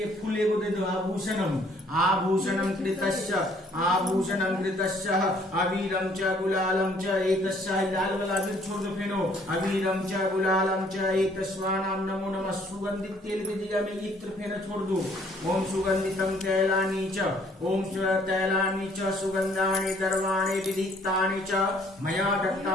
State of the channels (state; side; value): normal; both; correlation 0.61